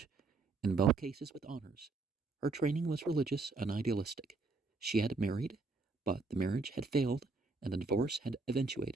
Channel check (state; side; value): quieter; left; 3.9 dB